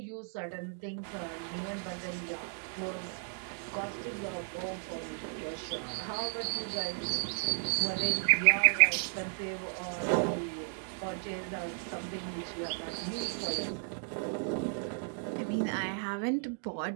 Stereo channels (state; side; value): silent; left; 55 dB below the other